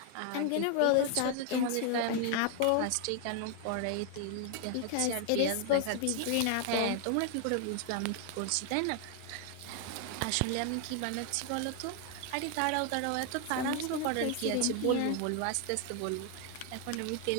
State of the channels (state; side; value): different; both; correlation 0.00